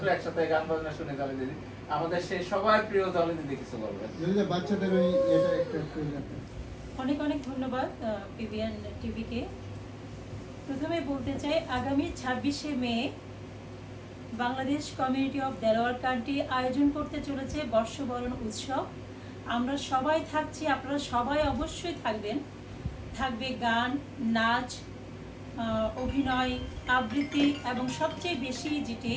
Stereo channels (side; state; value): both; identical; correlation 1.00